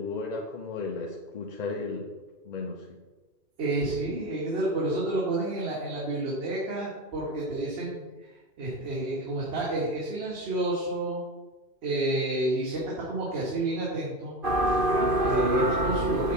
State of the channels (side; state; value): left; late; 2.5 ms